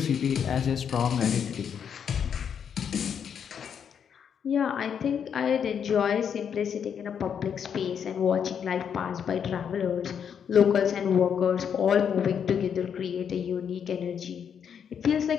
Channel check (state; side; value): quieter; right; 7.7 dB